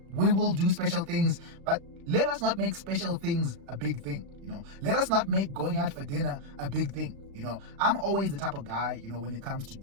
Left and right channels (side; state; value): left; late; 35 ms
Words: will do special things, but let us not make special things a big thing. Let us not make going out for dinner a big thing. I'm always the type of guy, when it comes to